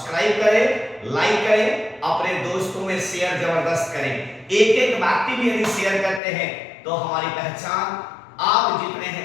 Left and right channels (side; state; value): right; drops out; at 6.2 s